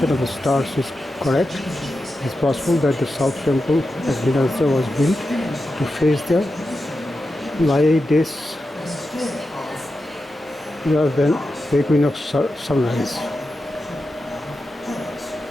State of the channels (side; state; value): both; normal; correlation 0.90